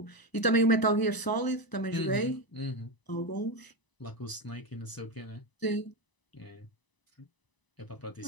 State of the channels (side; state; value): right; late; 1.0 ms